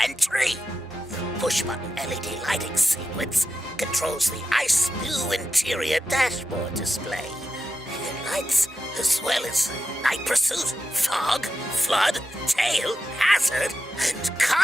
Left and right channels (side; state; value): both; normal; correlation 0.90